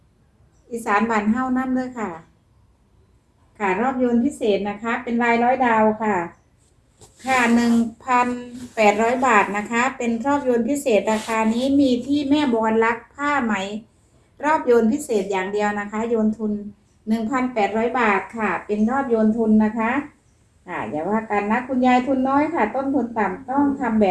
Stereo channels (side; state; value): both; identical; correlation 1.00